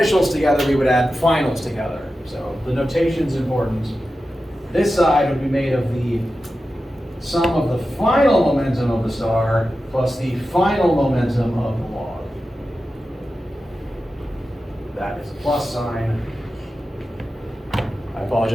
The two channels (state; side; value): normal; both; correlation 0.92